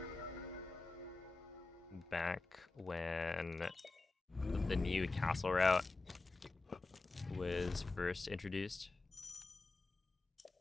Back when the new castle route was first introduced.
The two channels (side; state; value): right; quieter; 3.5 dB